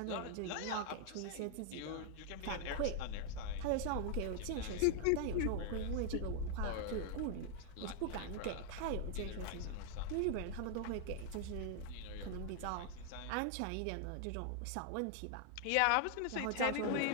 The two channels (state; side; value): different; both; correlation 0.00